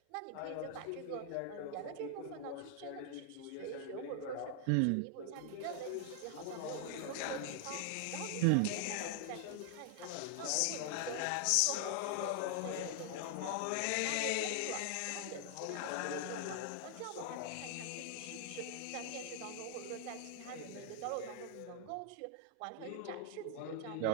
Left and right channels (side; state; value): both; different; correlation 0.00